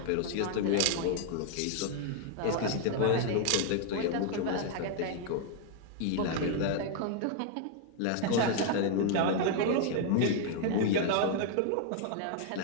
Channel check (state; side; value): different; both; correlation 0.00